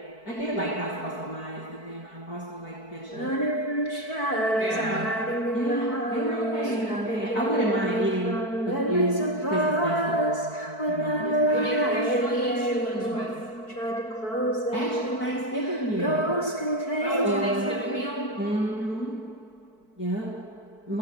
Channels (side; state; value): right; late; 4.6 ms